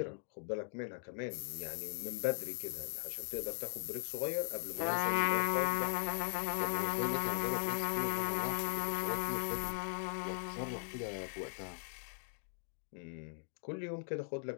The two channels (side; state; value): right; silent; digital silence